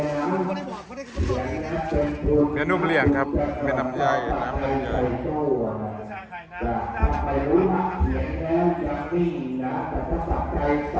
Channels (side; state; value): both; identical; correlation 1.00